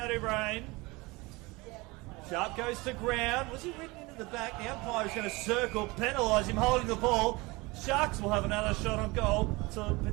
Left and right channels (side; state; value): left; quieter; 23.7 dB